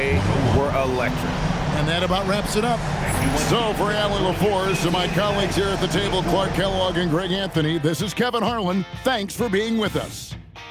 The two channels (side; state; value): both; identical; correlation 1.00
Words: were electric. And that about wraps it up. So for Allie LaForce and my colleagues here at the table, Clark Kellogg and Greg Anthony, this is Kevin Harlan. Thanks for being with us.